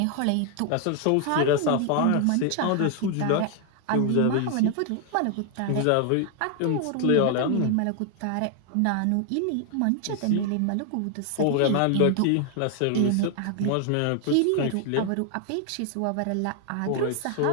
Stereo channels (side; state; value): both; different; correlation 0.00